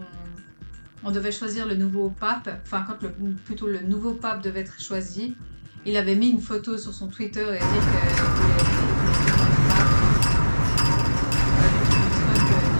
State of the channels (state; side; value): inverted; both; correlation -1.00